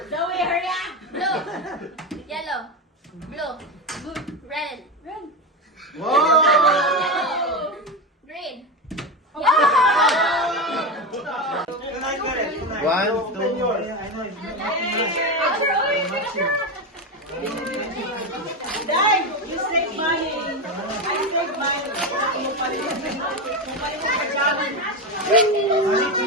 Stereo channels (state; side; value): normal; both; correlation 0.16